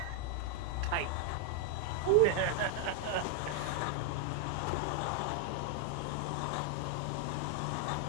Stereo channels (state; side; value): different; both; correlation 0.00